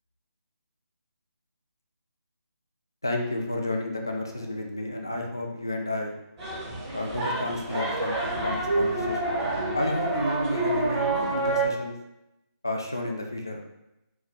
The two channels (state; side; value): inverted; both; correlation -0.58